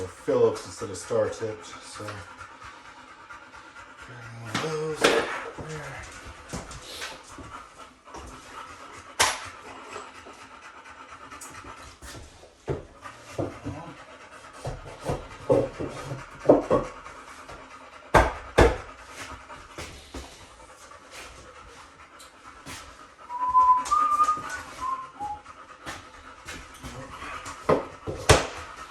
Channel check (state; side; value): identical; both; correlation 1.00